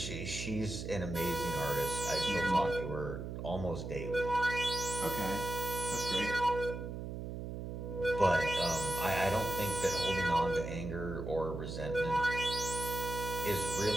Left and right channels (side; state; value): right; noise; hum, 6 dB below the sound